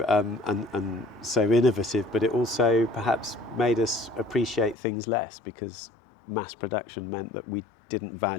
and so innovative, but it also perhaps made us appreciate things less, because mass production meant that we didn't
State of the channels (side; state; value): right; drops out; at 4.8 s